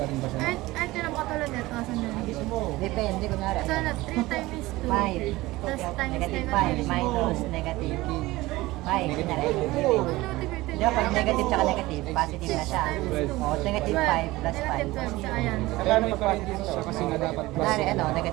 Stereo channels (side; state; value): left; quieter; 19.2 dB